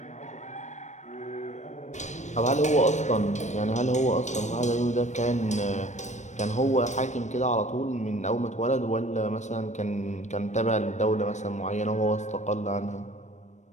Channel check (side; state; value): right; late; 0.34 ms